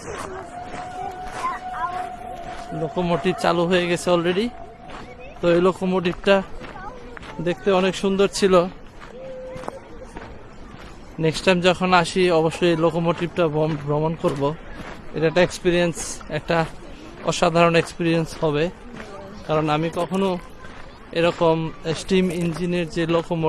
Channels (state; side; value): identical; both; correlation 1.00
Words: লোকোমোটিভ চালু হয়ে গেছে অলরেডি। তো এই লোকোমোটিভটা দেখতে অনেক সুন্দর ছিল। নেক্সট টাইম যখন আসি অবশ্যই লোকোমোটিভটা ভ্রমণ করব। এটা একটা এক্সপিরিয়েন্স, একটা অসাধারণ এক্সপিরিয়েন্স হবে, কারণ আমি কখনো এরকম স্টিম ইঞ্জিনের যে